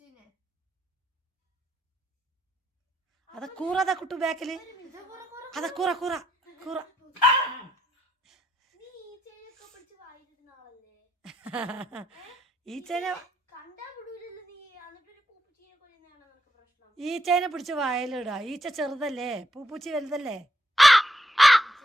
അതാ കൂറ, അതാ കുട്ടു ബാക്കില്. അതാ കൂറ കൂറ കൂറ. ഈച്ചേനെ പിടിച്ച് വായിലിടാ. ഈച്ച ചെറുതല്ലേ, പൂപ്പൂച്ചി വലുതല്ലേ.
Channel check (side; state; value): both; normal; correlation 0.77